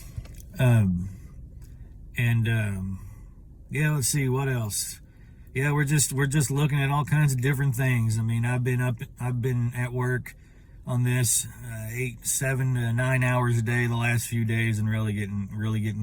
Yeah, let's see what else. Yeah, we're just looking at all kinds of different things. I mean, I've been at work on this 8, 7 to 9 hours a day the last few days, and really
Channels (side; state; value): both; identical; correlation 1.00